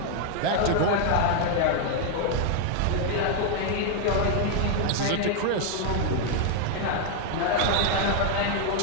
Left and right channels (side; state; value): both; different; correlation 0.00